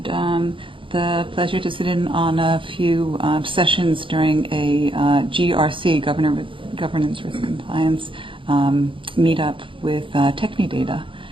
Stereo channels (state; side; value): late; left; 0.25 ms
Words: the pleasure to sit in on a few sessions during a GRC, Governance Risk Compliance, meetup with Technidata,